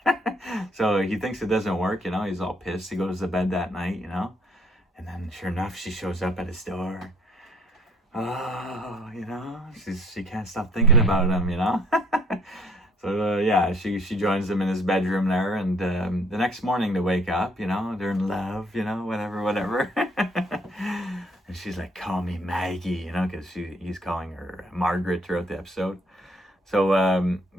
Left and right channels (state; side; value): normal; both; correlation 0.62